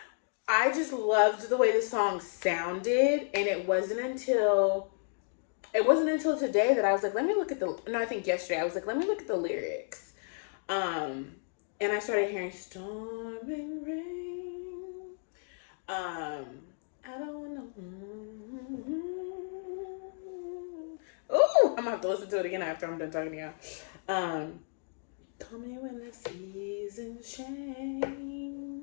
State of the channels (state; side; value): silent; right; 56 dB below the other